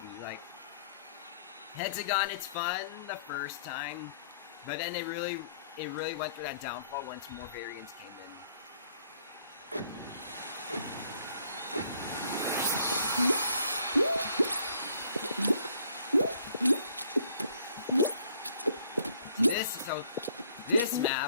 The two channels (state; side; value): inverted; both; correlation -0.62